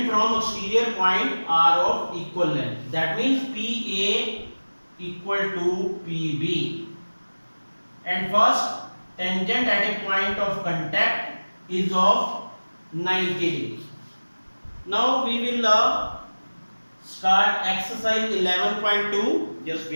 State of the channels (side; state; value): both; inverted; correlation -1.00